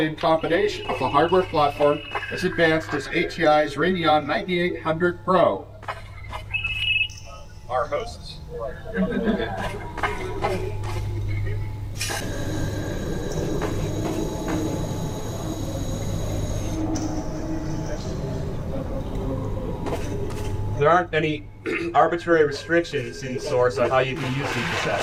in combination with a hardware platform as advanced as ATI's Radeon 9800 Pro. Our hosts. There aren't any arbitrary restrictions in Source on how you can use these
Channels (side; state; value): both; identical; correlation 1.00